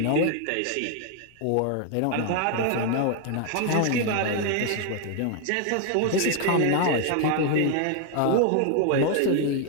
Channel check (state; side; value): different; both; correlation 0.01